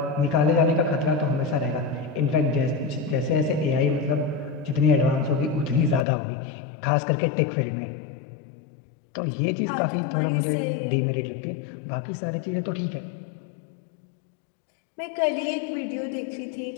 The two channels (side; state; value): right; drops out; at 6.1 s